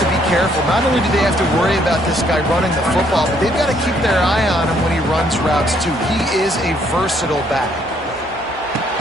be careful. Not only do they have to worry about this guy running the football, but they've got to keep their eye on him when he runs routes, too. He is a versatile back.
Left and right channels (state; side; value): normal; both; correlation 0.68